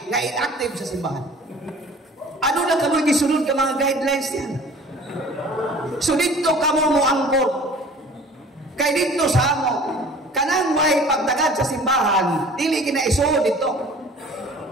nga inactive sa simbahan. Ano na kamoy gisunod ka mga guidelines diyan? So dito kamo mo angkor. Kay dito sa amo kanang way pagdagad sa simbahan, dili kinaisuod dito.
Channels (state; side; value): normal; both; correlation 0.47